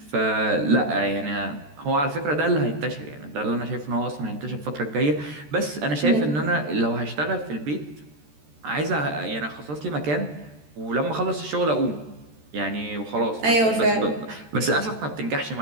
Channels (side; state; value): left; late; 13 ms